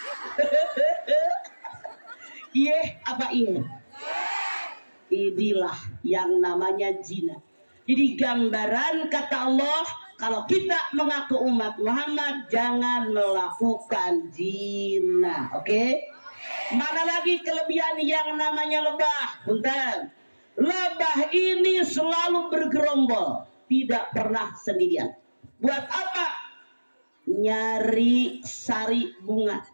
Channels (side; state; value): both; inverted; correlation -1.00